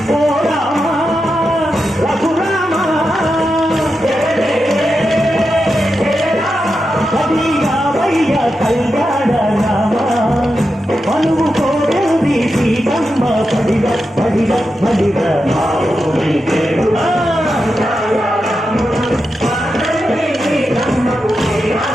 ఓ రామ రఘురామ కవియావయ్య కళ్యాణ రామ, మనువు కోరేది సీతమ్మ పడిగ పడిగ పడిగ మా ఊరి దేవుడా.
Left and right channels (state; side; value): normal; both; correlation 0.88